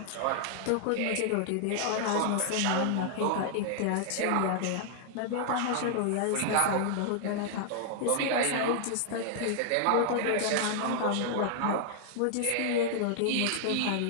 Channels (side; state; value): both; different; correlation -0.01